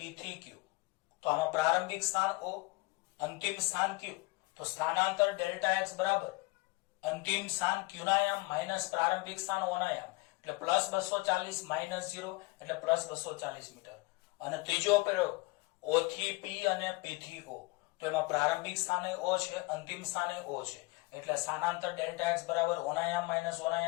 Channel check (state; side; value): quieter; right; 24.3 dB